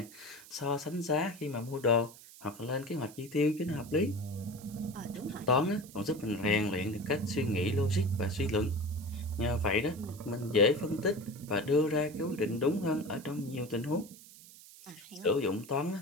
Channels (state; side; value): noise; right; hiss, 19 dB below the sound